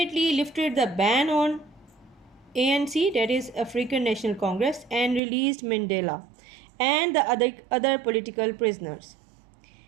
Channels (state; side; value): drops out; left; at 5.2 s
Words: lifted the ban on ANC, that is African National Congress, and released Mandela and the other political prisoners.